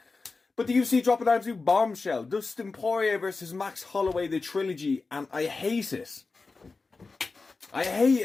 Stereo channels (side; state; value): right; quieter; 4.0 dB